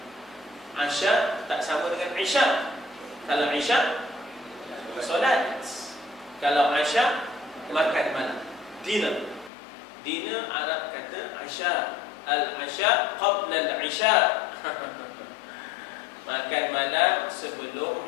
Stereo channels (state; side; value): drops out; right; at 9.5 s